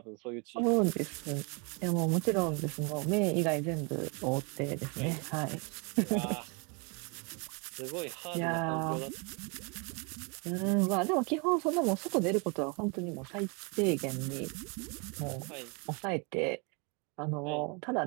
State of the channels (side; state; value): left; quieter; 32.7 dB